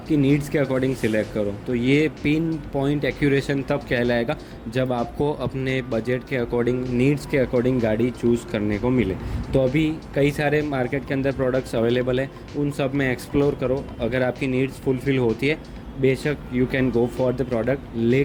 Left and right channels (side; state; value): both; identical; correlation 1.00